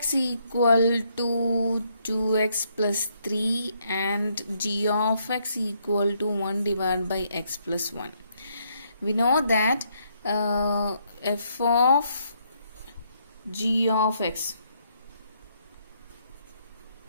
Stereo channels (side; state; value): both; inverted; correlation -0.73